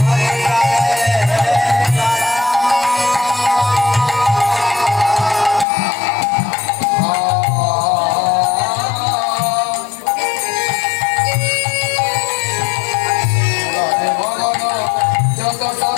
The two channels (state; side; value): drops out; right; at 5.7 s